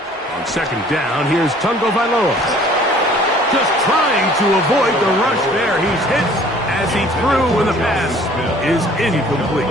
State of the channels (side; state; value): both; normal; correlation 0.54